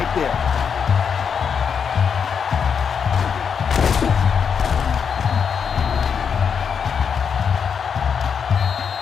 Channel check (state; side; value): quieter; right; 6.7 dB